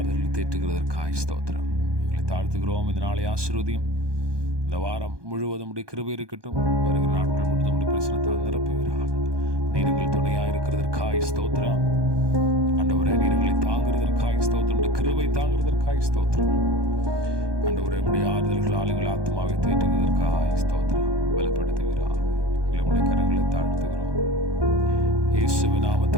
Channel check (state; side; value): late; left; 1.2 ms